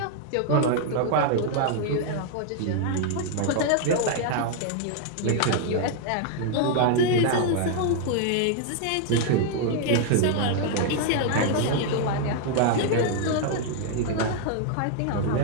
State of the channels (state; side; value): different; both; correlation 0.00